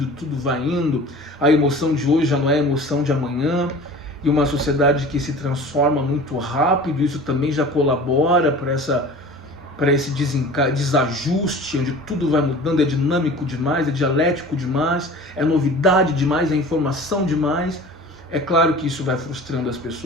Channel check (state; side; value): normal; both; correlation 0.41